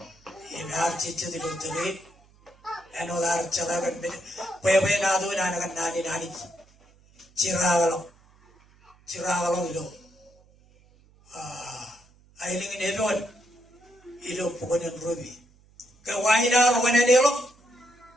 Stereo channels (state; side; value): noise; right; hum, 30 dB below the sound